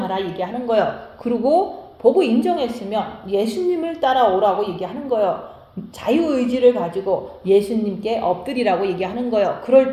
얘기하는 거예요. 그리고 보고 인정했으면 예수님을 따라오라고 얘기하는 거예요. 자유의지를 가지고 예수님께 엎드리라고 얘기하는 거예요.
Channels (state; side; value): identical; both; correlation 1.00